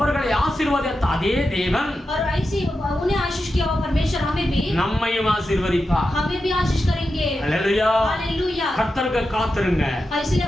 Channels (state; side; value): normal; both; correlation 0.90